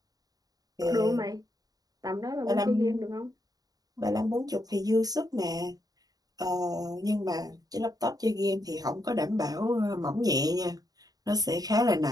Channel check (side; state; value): left; late; 0.18 ms